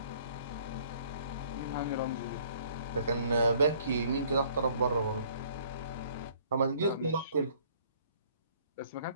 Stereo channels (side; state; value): both; inverted; correlation -0.59